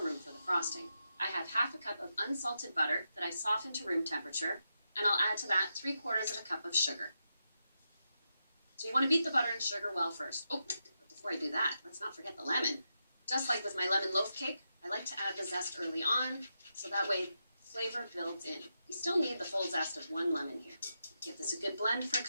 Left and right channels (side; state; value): both; inverted; correlation -0.86